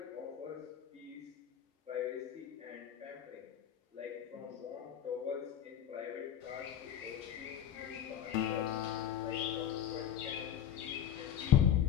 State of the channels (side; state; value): right; quieter; 9.8 dB